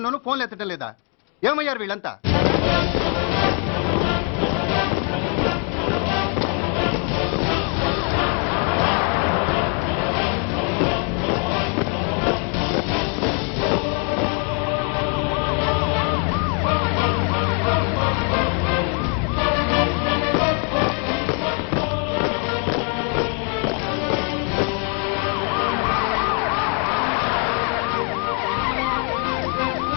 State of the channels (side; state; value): right; quieter; 38.6 dB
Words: ఫోన్లు ఎత్తడం లేదా? ఏమయ్యారు వీళ్ళంతా?